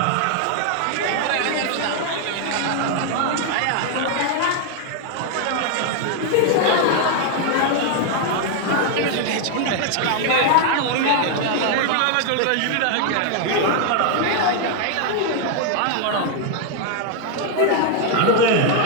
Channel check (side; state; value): both; different; correlation 0.00